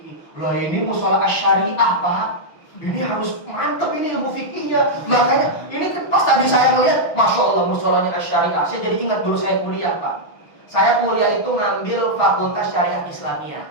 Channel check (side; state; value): right; late; 6.2 ms